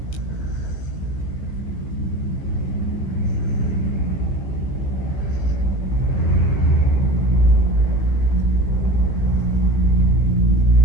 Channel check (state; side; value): late; right; 15 ms